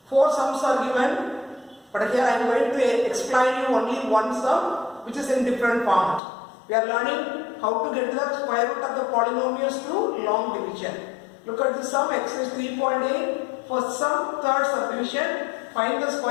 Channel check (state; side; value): drops out; right; at 6.2 s